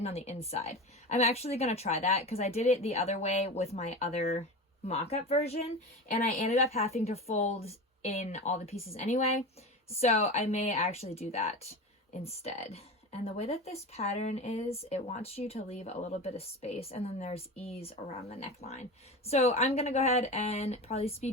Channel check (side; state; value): both; normal; correlation 0.27